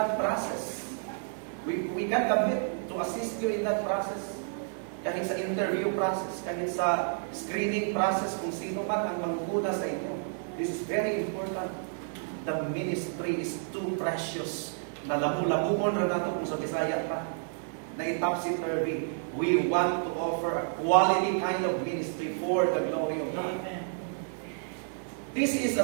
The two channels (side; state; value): left; silent; 58 dB below the other